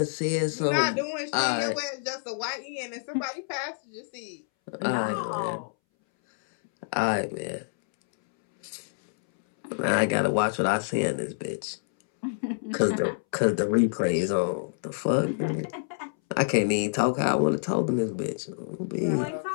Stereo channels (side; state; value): right; silent; 60 dB below the other